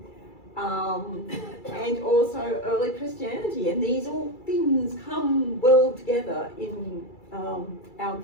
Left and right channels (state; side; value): late; right; 2.3 ms